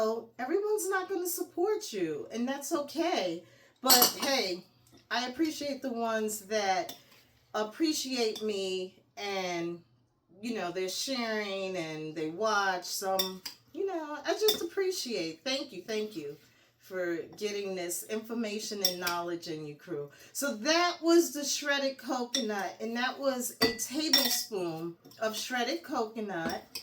everyone's not going to support you. And that's okay. But, hey, I appreciate the ones that appreciate me and, you know, they're sharing and they watch some, you know, I just appreciate. Thank you for getting this information and knowledge in you, crew. So that was the shredded coconut, and that was a tablespoon of shredded coconut.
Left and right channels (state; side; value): identical; both; correlation 1.00